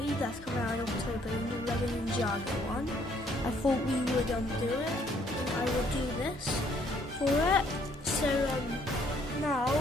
that's coming out in October, the new Lego Ninjago one, I thought we would do it. I will do this for it. So now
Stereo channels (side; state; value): both; normal; correlation 0.65